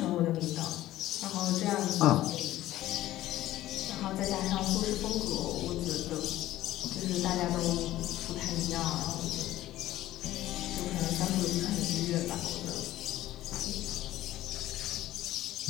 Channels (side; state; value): right; quieter; 14.8 dB